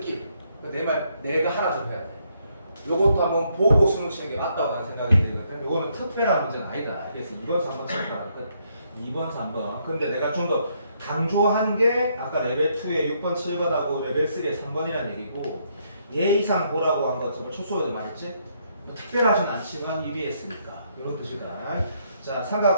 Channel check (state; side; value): inverted; both; correlation -0.73